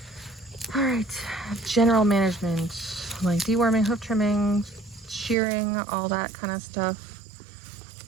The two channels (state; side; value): drops out; left; at 5.4 s